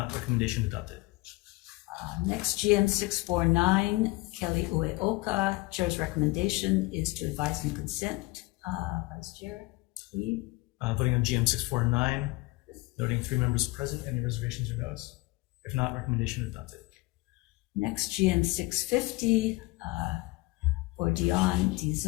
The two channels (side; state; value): right; quieter; 22.3 dB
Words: recommendation adopted. Next, GM 649, Kelly Ueoka. Chair's recommendation is to advise and consent. Vice Chair Lee. Voting on GM 649, noting 3 members present. Any reservations or no's? If not, recommendation adopted. Next, GM 650 for Dion